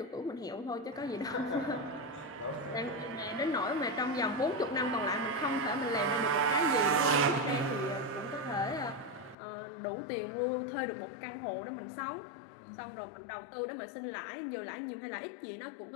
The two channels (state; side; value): drops out; right; at 9.3 s